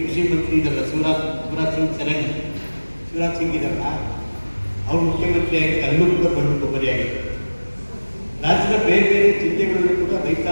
ಕೃಷಿ ಮಂತ್ರಿ ಇದ್ದಾರಲ್ಲ, ಶಿವರಾಜ್ ಸಿಂಗ್ ಇದ್ದಾರಲ್ಲ, ಅವರು ಮುಖ್ಯಮಂತ್ರಿಯಾಗಿ ಅಲ್ಲೂ ಕೂಡ ಬಂದು ಕೊಬ್ಬರಿಯಾಗಿದೆ. ರಾಜ್ಯದ ಬೇರೆ ಬೇರೆ ಜಿಲ್ಲೆಗಳಲ್ಲೂ ಕೂಡ ರೈತ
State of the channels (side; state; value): both; inverted; correlation -1.00